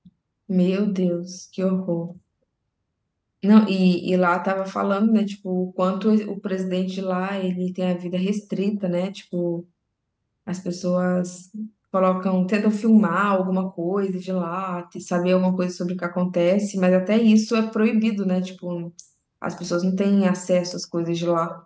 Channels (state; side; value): identical; both; correlation 1.00